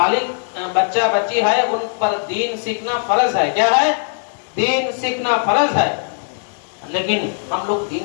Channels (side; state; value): right; silent; digital silence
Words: बच्चा बच्ची है उन पर दीन सीखना फर्ज है। क्या है? दीन सीखना फर्ज है, लेकिन हम लोग